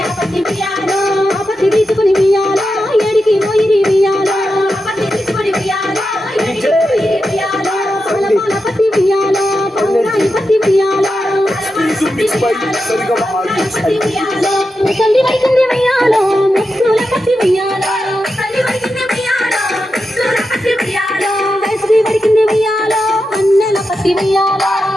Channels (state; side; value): normal; both; correlation 0.89